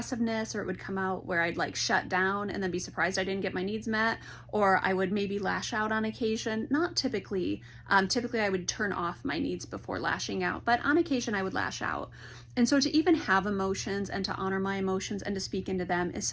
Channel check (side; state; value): both; identical; correlation 1.00